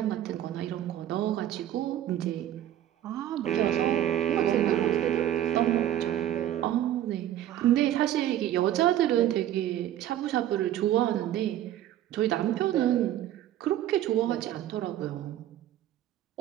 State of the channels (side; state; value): left; quieter; 12.1 dB